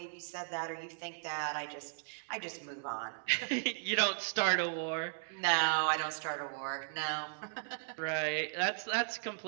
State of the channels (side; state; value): left; silent; digital silence